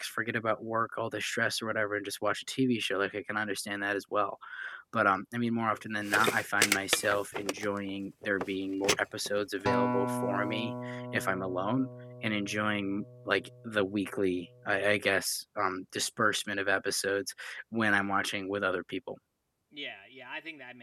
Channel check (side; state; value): both; identical; correlation 1.00